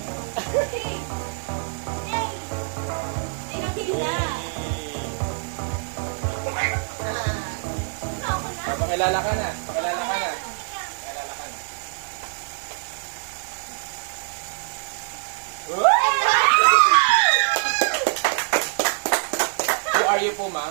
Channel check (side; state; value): left; silent; 62 dB below the other